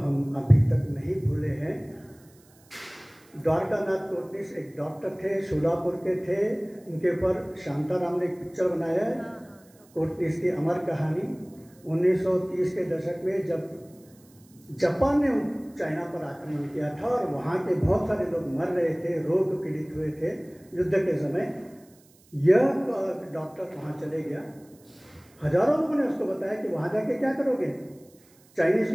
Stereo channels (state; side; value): noise; right; hiss, 29 dB below the sound